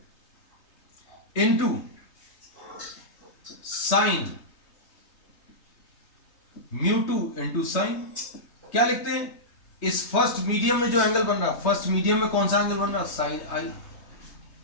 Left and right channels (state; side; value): late; right; 3.2 ms